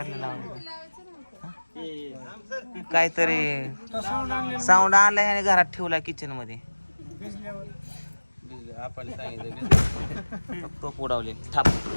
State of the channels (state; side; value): inverted; both; correlation -1.00